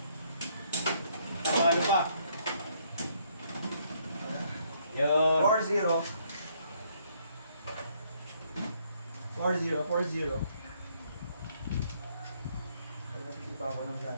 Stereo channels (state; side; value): inverted; both; correlation -0.68